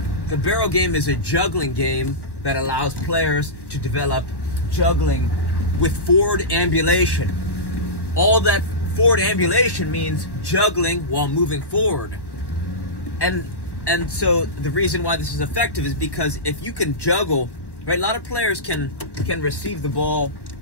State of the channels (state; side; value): late; right; 1.1 ms